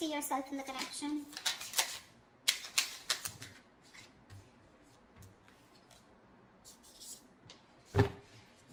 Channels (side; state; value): both; identical; correlation 1.00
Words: yourself in the connection?